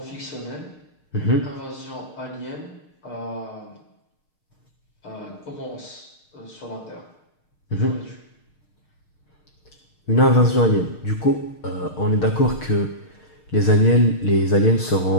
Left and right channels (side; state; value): right; late; 6.5 ms